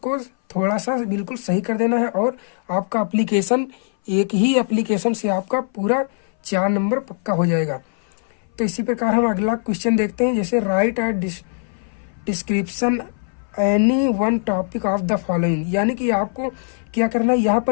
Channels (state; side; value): silent; right; 60 dB below the other